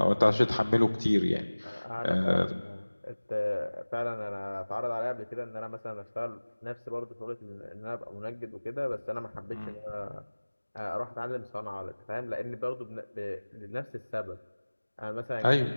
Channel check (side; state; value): both; inverted; correlation -1.00